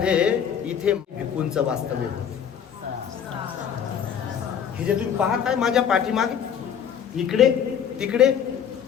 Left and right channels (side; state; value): right; quieter; 8.3 dB